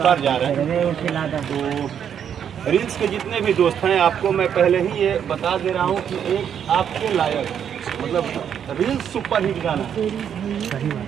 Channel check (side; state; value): left; quieter; 8.6 dB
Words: जा रहे हैं। तो रील्स के जितने भी दोस्त हैं, आपको मैं पहले ही ये बता दे रहा हूँ कि एक आपके लायक, मतलब रील्स सुपर हिट गाना